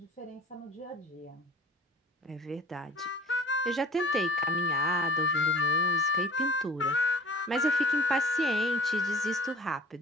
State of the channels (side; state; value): both; normal; correlation 0.47